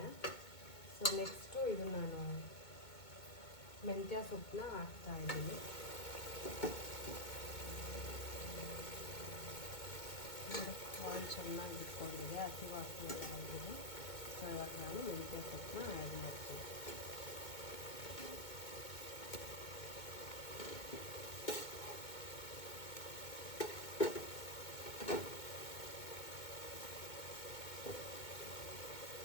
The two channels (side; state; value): right; late; 2.2 ms